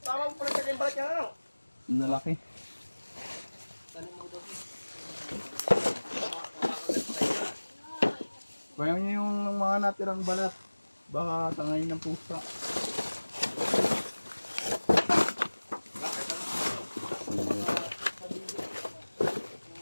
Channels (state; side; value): inverted; both; correlation -1.00